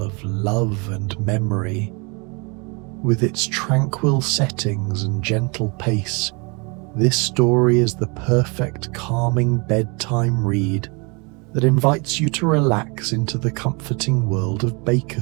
love and memory. With its tranquil settings and gentle pace, this story is the perfect calming bedtime read that invites you to relax into the comforting world of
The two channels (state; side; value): quieter; left; 31.0 dB